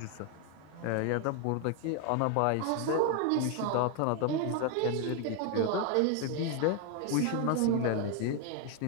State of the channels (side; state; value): both; different; correlation 0.01